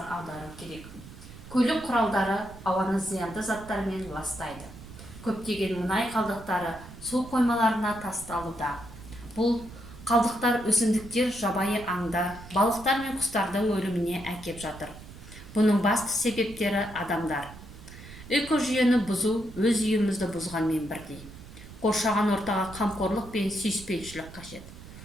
аудару керек. Көлік құралдары ауаны зиянды заттармен ластайды. Көптеген мұнай қалдықтары су қоймаларына тасталуда. Бұл қалдықтар өсімдіктер, жабайы аңда, балықтар мен құстардың өліміне әкеп жатыр. Бұның басты себептері адамдар. Экожүйені бұзу өз үйімізді бұзғанмен бірдей. Қоршаған ортаға қамқорлық пен сүйіспеншілік қажет.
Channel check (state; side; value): noise; right; rumble, 16 dB below the sound